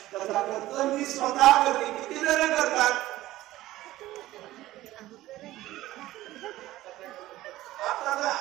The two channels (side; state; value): left; quieter; 16.0 dB